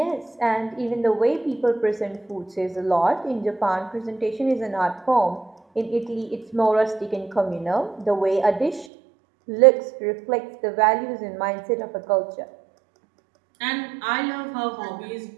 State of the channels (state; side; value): drops out; left; at 8.8 s